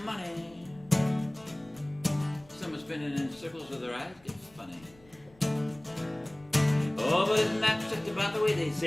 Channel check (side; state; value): left; noise; rumble, 28 dB below the sound